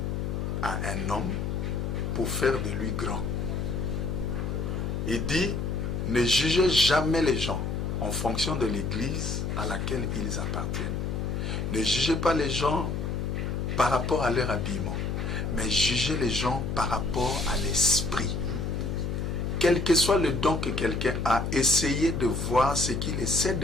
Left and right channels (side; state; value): left; noise; hum, 2 dB below the sound